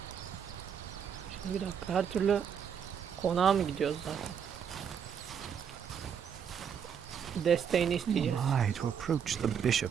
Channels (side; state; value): left; quieter; 7.7 dB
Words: Şimdi bir dakika, her türlü konağa mı gidiyoruz zaten? Desteğini Who isteyeceğiz. am I to approach the